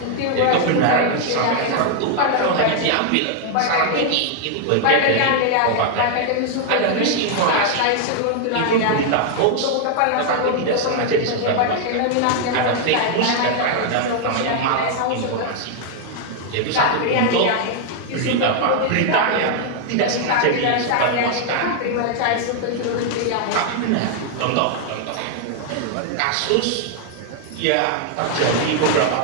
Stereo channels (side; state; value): both; different; correlation 0.00